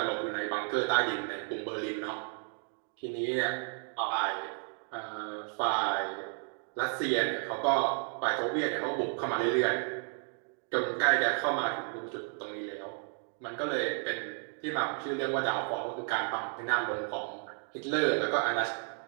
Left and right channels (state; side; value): quieter; left; 39.9 dB